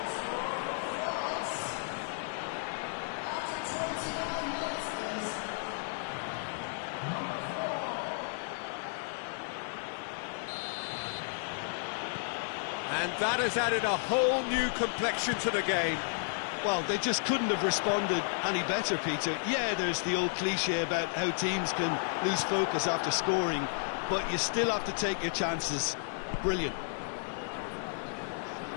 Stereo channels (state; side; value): silent; right; 56 dB below the other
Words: And that has added a whole new complexion to the game. Well, they just couldn't have responded any better, Peter. Yeah, there's the old cliche about how teams can lose focus after scoring, but you still have to take your chances. Brilliant.